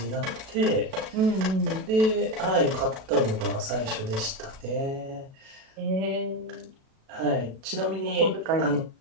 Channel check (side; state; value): left; late; 37 ms